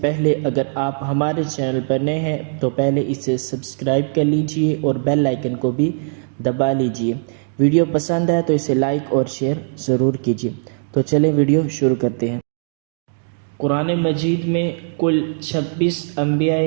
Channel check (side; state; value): left; silent; digital silence